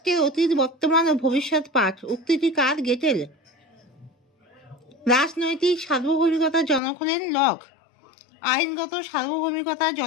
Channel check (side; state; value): right; drops out; at 6.8 s